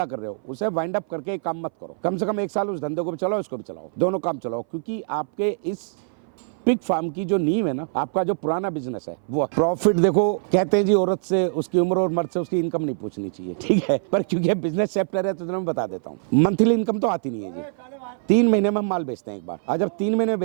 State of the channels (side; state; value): left; silent; 59 dB below the other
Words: कर रहे हो, उसे वाइंड अप करके एक काम मत करो, कम से कम 1 साल उस धंधे को भी चलाओ, इसको भी चलाओ, दोनों काम चलाओ, क्योंकि आपके इस पिग फार्म की जो नींव है ना, आपका जो पुराना बिजनेस है वो प्रॉफिट। देखो कहते हैं जी औरत से उसकी उम्र और मर्द से उसकी इनकम नहीं पूछनी चाहिए, ठीक है, पर क्योंकि बिजनेस चैप्टर है तो मैं बता देता हूँ। मंथली इनकम तो आती नहीं है जी। 3 महीने में हम माल बेचते हैं एक बार, और जब 3 महीने में